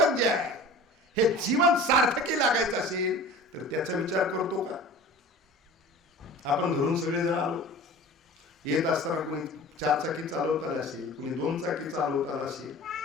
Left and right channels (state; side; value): normal; both; correlation 0.39